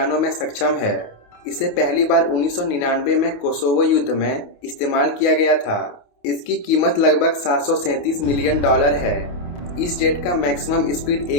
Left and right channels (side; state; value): right; late; 28 ms